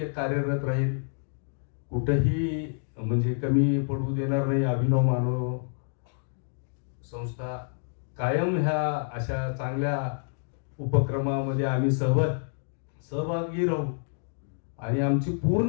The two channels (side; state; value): right; silent; digital silence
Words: कार्यरत राहील, कुठंही म्हणजे कमी पडू देणार नाही. अभिनव मानव संस्था कायम ह्या अशा चांगल्या उपक्रमामध्ये आम्ही सहभागी राहू आणि आमची